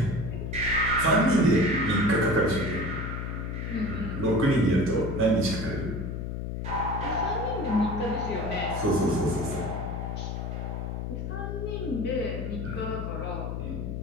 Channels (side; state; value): left; noise; hum, 4 dB below the sound